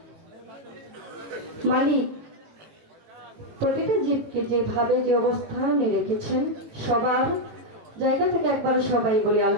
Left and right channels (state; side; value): late; left; 18 ms